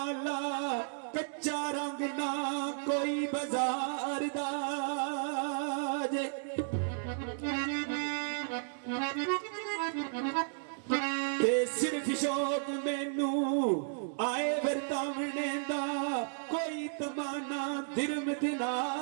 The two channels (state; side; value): silent; left; digital silence